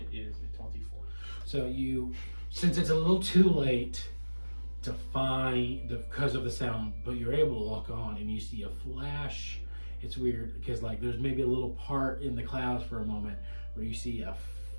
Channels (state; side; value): inverted; both; correlation -1.00